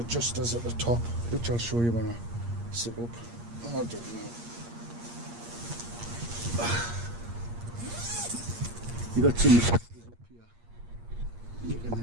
at the top, which I'll show you when I sit up. I'll do it now. You got some adjusters up here. You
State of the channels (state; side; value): late; left; 8.5 ms